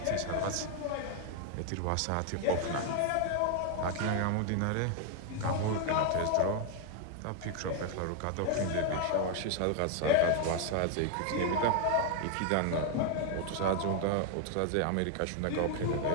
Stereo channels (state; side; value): different; both; correlation 0.00